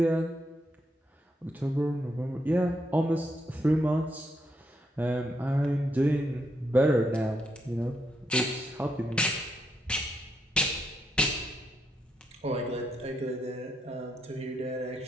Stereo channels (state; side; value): normal; both; correlation 0.79